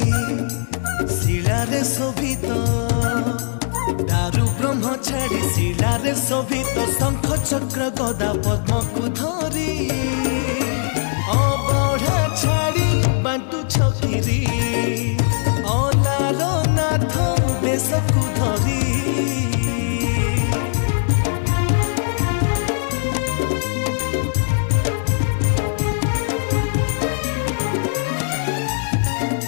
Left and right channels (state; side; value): silent; right; digital silence